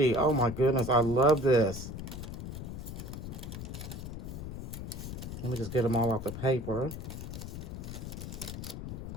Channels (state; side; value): noise; left; rumble, 7 dB below the sound